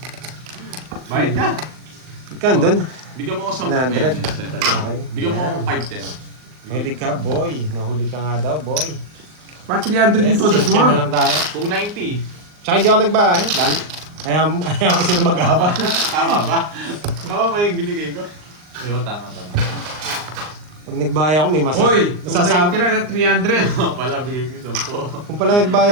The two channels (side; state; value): left; late; 39 ms